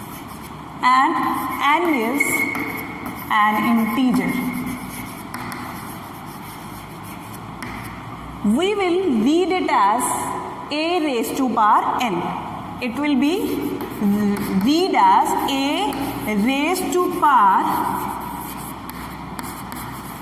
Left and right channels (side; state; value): both; identical; correlation 1.00